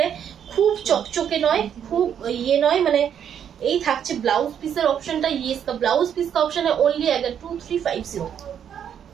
है, খুব চকচকে নয়, খুব ये নয়, মানে এই থাকছে ব্লাউজ পিসের অপশনটা, ये इसका ब्लाउज पीस का ऑप्शन है, ओनली अगर 2350,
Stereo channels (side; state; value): left; quieter; 8.8 dB